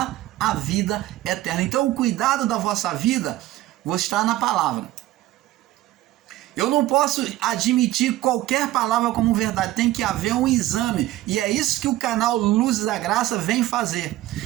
a vida eterna. Então, o cuidado da vossa vida está na palavra. Eu não posso admitir qualquer palavra como verdade, tem que haver um exame. E é isso que o canal Luzes da Graça vem fazer.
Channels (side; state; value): left; quieter; 15.9 dB